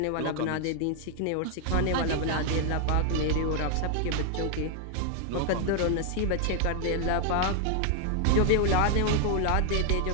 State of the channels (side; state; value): both; different; correlation 0.00